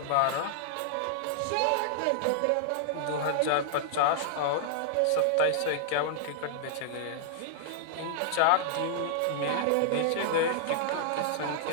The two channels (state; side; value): different; both; correlation -0.01